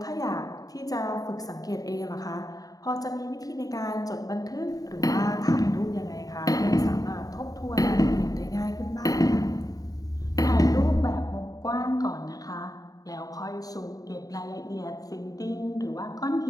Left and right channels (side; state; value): right; late; 0.18 ms